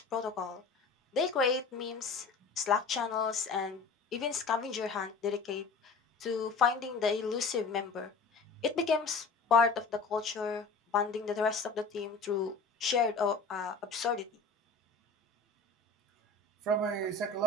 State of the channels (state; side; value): quieter; right; 4.4 dB